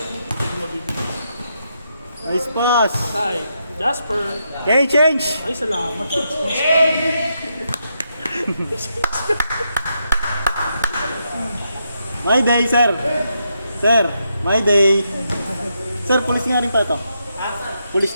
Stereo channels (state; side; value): inverted; both; correlation -0.81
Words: Mabibigay. Nice pass. Tay, Jasper. Okay, change. Ay, salamat. My day, sir. Sir, my day. Sir, pulis nga rin pa ito. Pulis